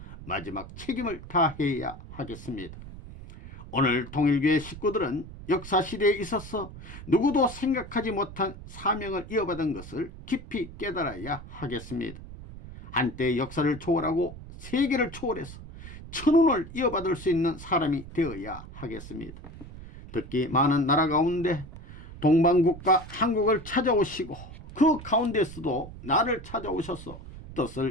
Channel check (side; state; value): right; noise; rumble, 14 dB below the sound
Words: 마지막 책임을 다해야 하겠습니다. 오늘 통일교회 식구들은 역사시대에 있어서 누구도 생각하지 못한 사명을 이어받은 것을 깊이 깨달아야 하겠습니다. 한때 역사를 초월하고 세계를 초월해서 천운을 이어받을 수 있는 사람이 되어야 하겠습니다. 특히 많은 나라 가운데 동방국가 한국을 찾아오시고 그 가운데서도 나를 찾아오셔서